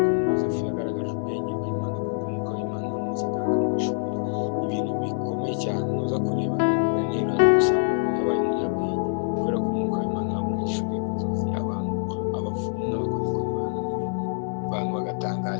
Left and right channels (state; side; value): silent; right; digital silence